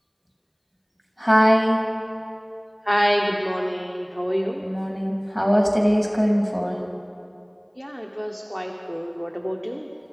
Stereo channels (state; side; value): identical; both; correlation 1.00